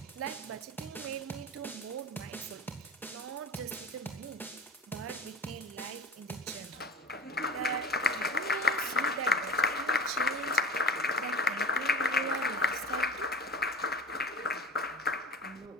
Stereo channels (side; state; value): both; normal; correlation 0.38